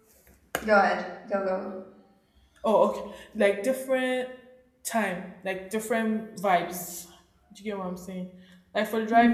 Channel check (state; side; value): identical; both; correlation 1.00